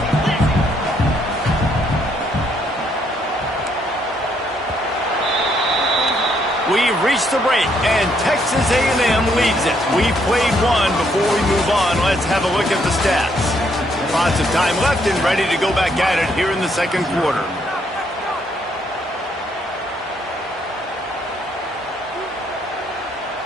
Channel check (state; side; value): normal; both; correlation 0.71